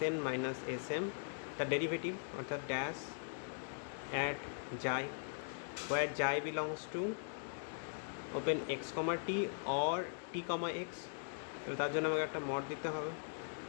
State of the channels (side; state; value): right; silent; digital silence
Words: minus Sm the derivative অর্থাৎ dash at xi where xi belongs to open x, t or t, x, তাহলে তার জন্য আমাকে একটা mod দিতে হবে।